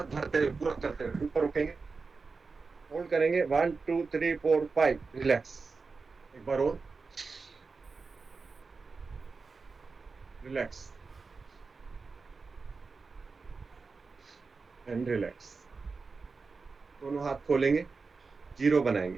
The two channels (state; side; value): quieter; left; 4.5 dB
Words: भरते हुए पूरा करते हुए ऊपर उठेंगे, होल्ड करेंगे 1 2 3 4 5। रिलैक्स, एक बार और, रिलैक्स एंड रिलैक्स। दोनों हाथ खोलेंगे, जीरो